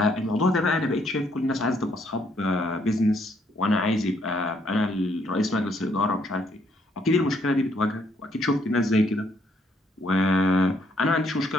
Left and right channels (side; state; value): both; normal; correlation 0.70